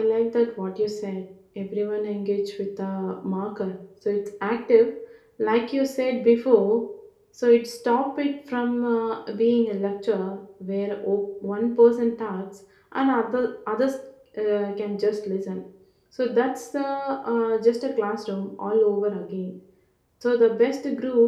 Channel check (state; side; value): identical; both; correlation 1.00